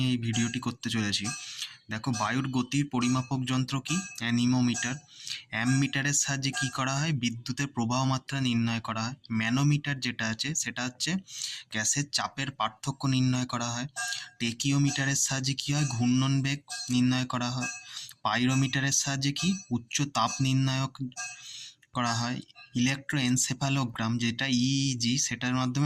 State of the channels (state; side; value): identical; both; correlation 1.00